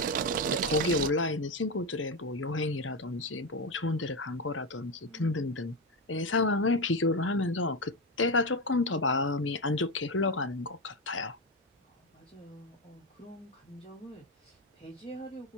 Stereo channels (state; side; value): normal; both; correlation 0.12